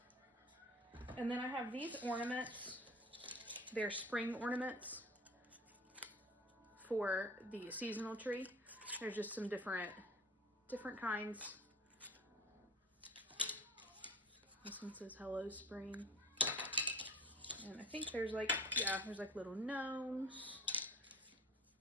And then I have these ornaments. They're spring ornaments for the seasonal tree. There's just some different kinds. This one says Hello Spring. And I think there's like little gnomes,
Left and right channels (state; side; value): normal; both; correlation 0.40